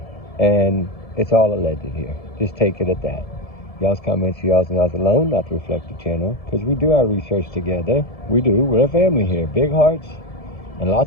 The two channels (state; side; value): late; right; 1.7 ms